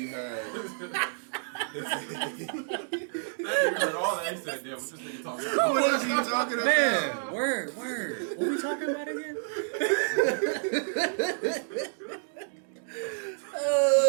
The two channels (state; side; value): silent; left; digital silence